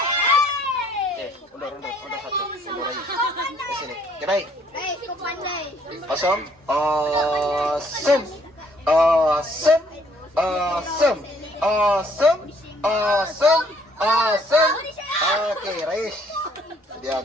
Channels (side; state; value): both; normal; correlation 0.64